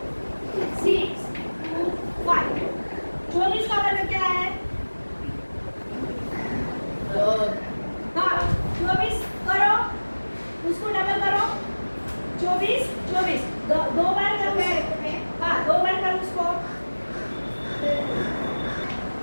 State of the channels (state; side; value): inverted; both; correlation -1.00